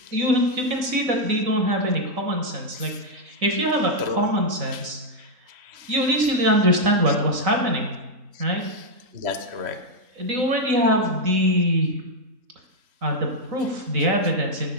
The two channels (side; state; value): left; late; 3.9 ms